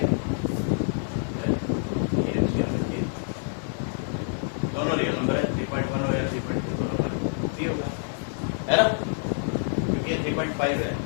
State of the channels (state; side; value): silent; right; 60 dB below the other